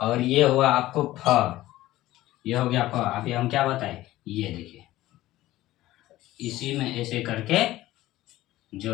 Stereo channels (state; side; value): quieter; right; 16.0 dB